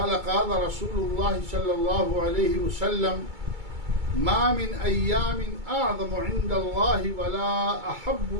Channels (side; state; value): left; late; 2.3 ms